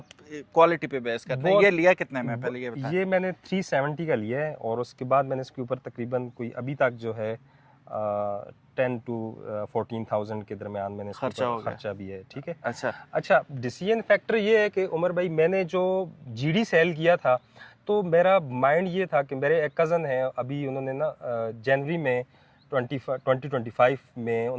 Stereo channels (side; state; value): both; identical; correlation 1.00